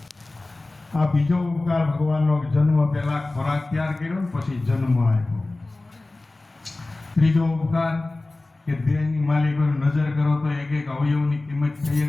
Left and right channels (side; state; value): right; quieter; 3.0 dB